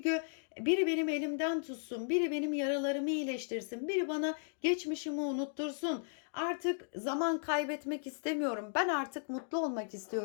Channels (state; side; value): silent; right; digital silence